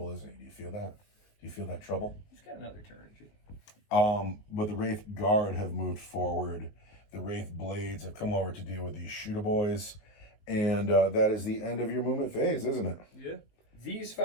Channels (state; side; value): late; right; 19 ms